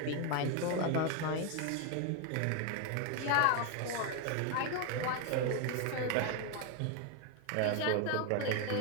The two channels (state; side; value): different; both; correlation 0.01